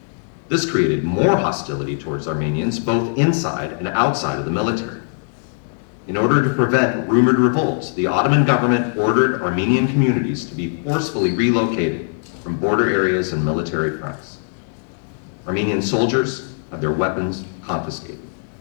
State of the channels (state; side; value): silent; right; digital silence